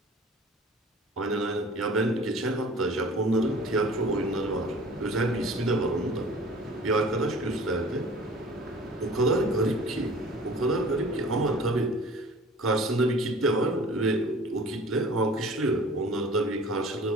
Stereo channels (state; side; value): normal; both; correlation 0.45